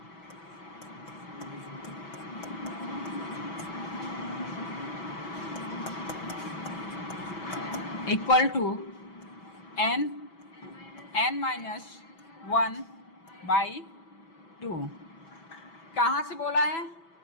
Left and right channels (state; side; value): late; right; 6.1 ms